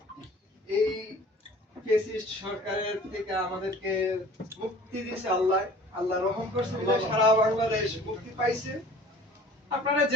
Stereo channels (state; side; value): normal; both; correlation 0.47